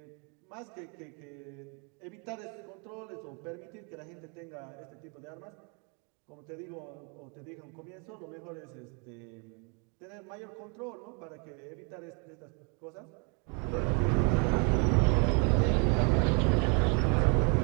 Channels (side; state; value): left; quieter; 35.2 dB